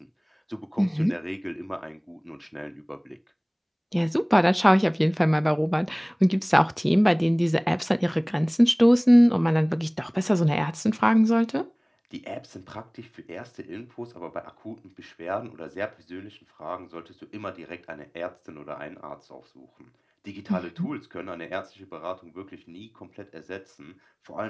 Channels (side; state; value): both; identical; correlation 1.00